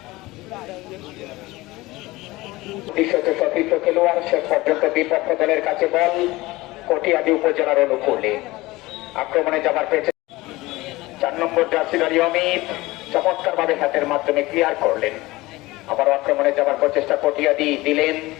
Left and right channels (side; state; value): right; quieter; 20.0 dB